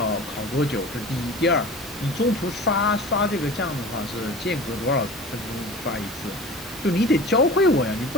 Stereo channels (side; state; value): both; normal; correlation 0.37